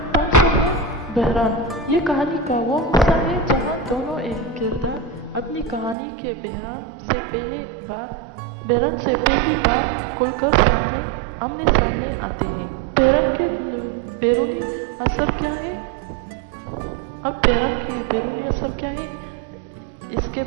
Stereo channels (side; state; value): left; drops out; at 6.0 s